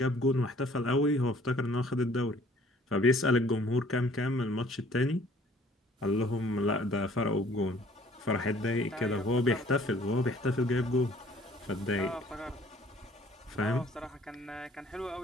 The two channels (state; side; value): normal; both; correlation 0.56